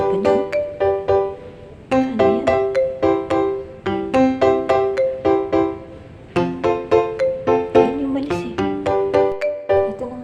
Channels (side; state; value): both; identical; correlation 1.00